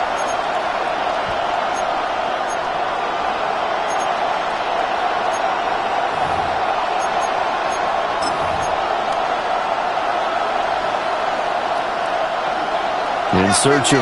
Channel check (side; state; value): both; identical; correlation 1.00